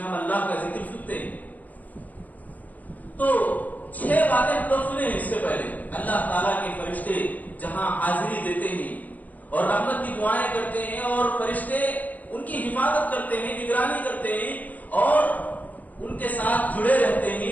ہم اللہ کا ذکر سنتے ہیں. تو 6 باتیں ہم لوگ سنے ہیں اس سے پہلے. اللہ تعالیٰ کے فرشتے جہاں حاضری دیتے ہیں اور رحمت کی دعائیں کرتے ہیں, اور فرشتے ان کی حفاظت کرتے ہیں, نگرانی کرتے ہیں, اور ان کے ساتھ جڑے رہتے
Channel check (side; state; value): right; late; 0.078 ms